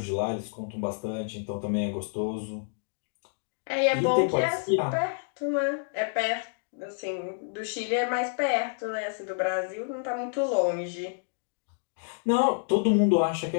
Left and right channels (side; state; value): right; silent; digital silence